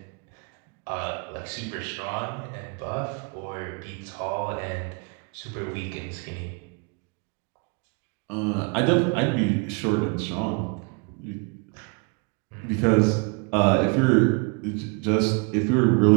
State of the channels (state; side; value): quieter; left; 33.4 dB